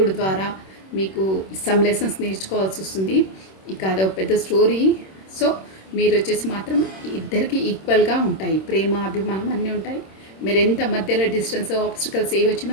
ద్వారా మీకు సమ్ లెసన్స్ నేర్చుకోవాల్సి వస్తుంది. ఇక అదొక పెద్ద స్టోరీ. సో మీరు వచ్చేసి మాత్రం ఇద్దరికి ఈక్వల్గా ఉంటాయి, ప్రేమ, అభిమానం అన్నీ ఉంటాయి. మీరు ఎంత మధ్యలో డిస్టెన్స్, ఆబ్స్టికల్స్ ఏ వచ్చినా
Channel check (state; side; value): late; right; 26 ms